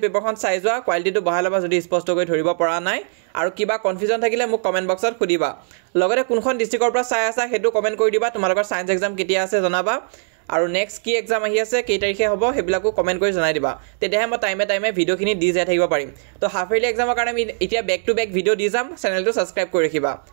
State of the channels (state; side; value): silent; left; digital silence